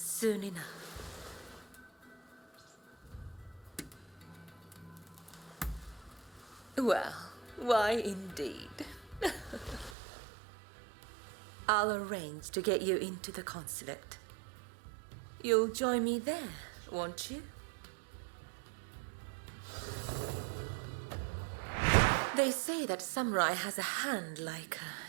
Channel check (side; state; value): left; drops out; at 10.0 s